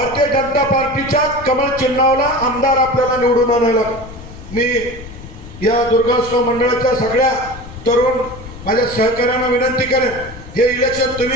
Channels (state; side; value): noise; left; rumble, 15 dB below the sound